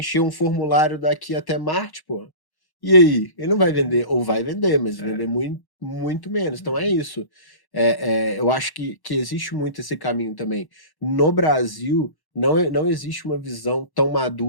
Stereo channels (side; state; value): right; late; 1.1 ms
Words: um formulário daqui até Marte, pô. E aí? Ele não vai vender, ou vai vender, mas vender muito, muito menos. Então é isso. Eu acho que existe muito esse caminho também. No Brasil, não existe uma visão tão